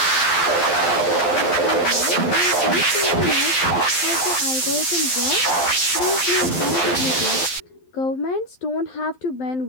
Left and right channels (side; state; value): right; late; 12 ms